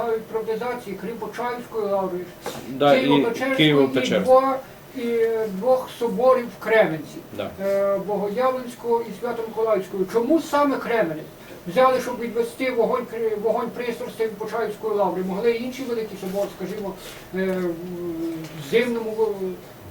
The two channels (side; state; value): both; identical; correlation 1.00